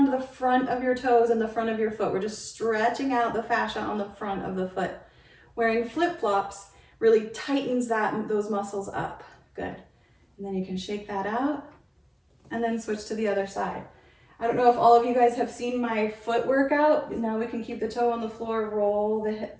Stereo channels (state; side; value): identical; both; correlation 1.00